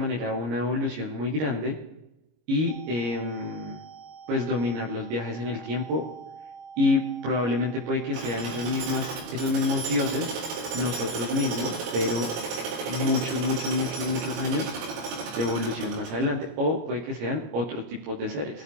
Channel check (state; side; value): late; left; 25 ms